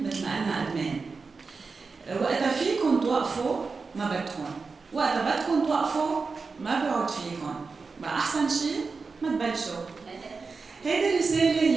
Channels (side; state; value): left; quieter; 4.5 dB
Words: مثل ما قلنا ادمان. وقتها فيكم توقفوا ما بدكم، وقتها بدكم توقفوا ما بيعود فيكم. بقى احسن شيء ما تبلشوا. هيدي الرسالة